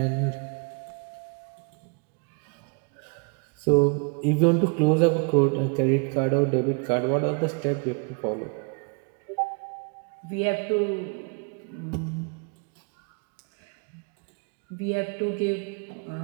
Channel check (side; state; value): left; quieter; 34.8 dB